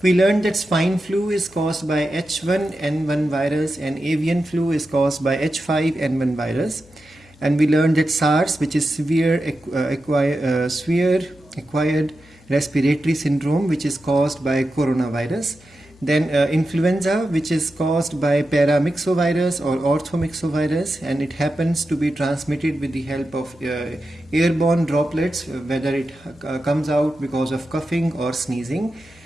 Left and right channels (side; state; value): left; noise; hum, 27 dB below the sound